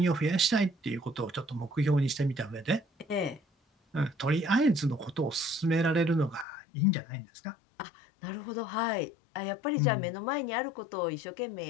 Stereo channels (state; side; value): drops out; right; at 6.5 s